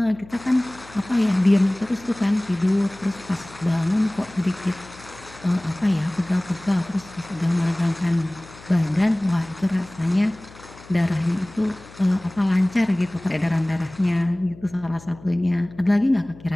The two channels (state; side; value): noise; left; hum, 21 dB below the sound